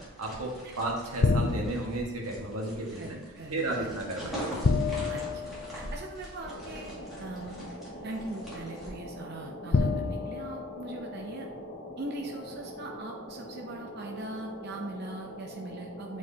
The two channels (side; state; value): both; normal; correlation 0.55